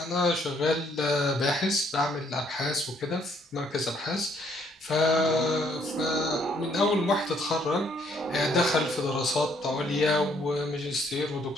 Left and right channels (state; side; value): normal; both; correlation 0.67